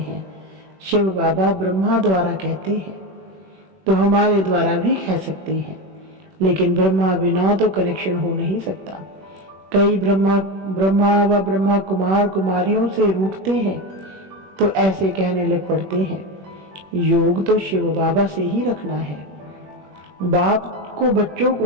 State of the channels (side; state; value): left; late; 21 ms